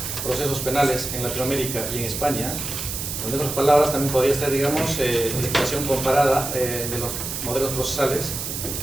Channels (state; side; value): noise; right; hiss, 5 dB below the sound